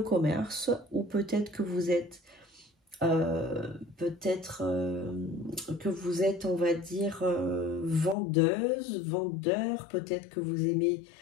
commerce ou peut-être que vous êtes que vous êtes, on va dire, vendeuse, vendeur, peut-être que vous aimez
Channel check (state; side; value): drops out; right; at 8.2 s